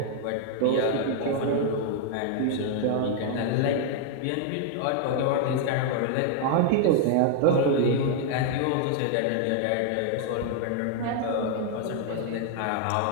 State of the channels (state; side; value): different; both; correlation 0.00